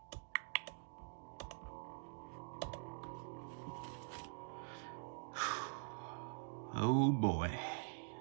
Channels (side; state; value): left; quieter; 39.9 dB